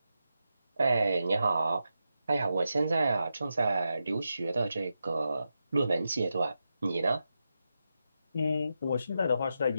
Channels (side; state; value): both; inverted; correlation -0.88